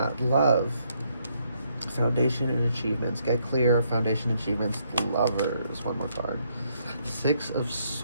love. Foundation and achievements. Get clear. Foundation achievements. The Lovers. One more card. Six of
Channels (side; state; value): both; inverted; correlation -0.72